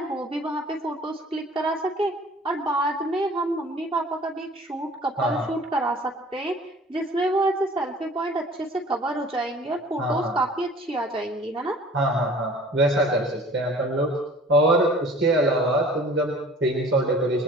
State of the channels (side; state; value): both; normal; correlation 0.48